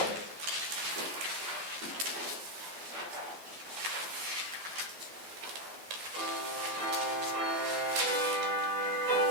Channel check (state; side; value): late; left; 12 ms